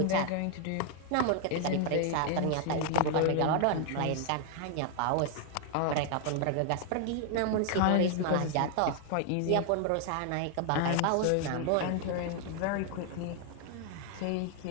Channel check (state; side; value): different; both; correlation 0.00